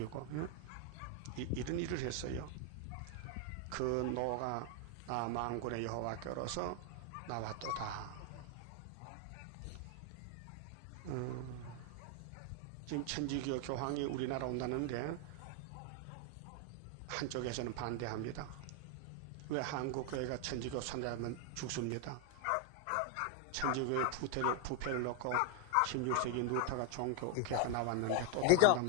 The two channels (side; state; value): both; different; correlation 0.00